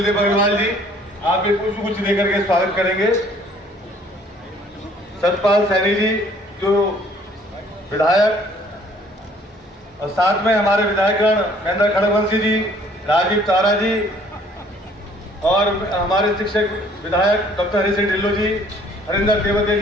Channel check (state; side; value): normal; both; correlation 0.58